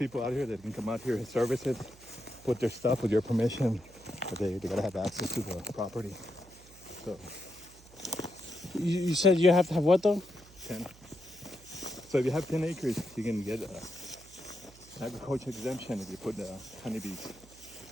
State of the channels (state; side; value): noise; right; hum, 23 dB below the sound